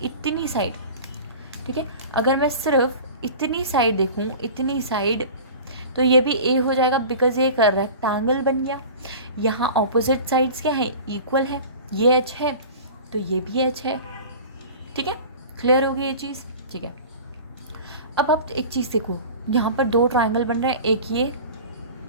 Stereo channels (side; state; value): both; inverted; correlation -0.38